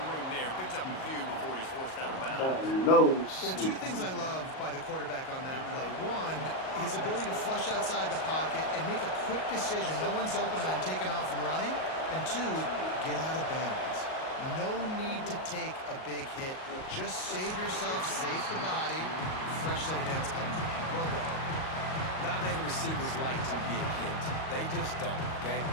room there. Picks up a few before he's forced out of bounds. Well, two things I love by the quarterback on that play. One, his ability to flush outside the pocket and make a quick decision. No one's open and I'm taking off and running. And two, get out of bounds. No need to take a big hit. Just save yourself, save the body. Fresh set of downs coming. Well done. Not many receivers like to get hit. They just don't, okay?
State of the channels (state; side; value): late; right; 38 ms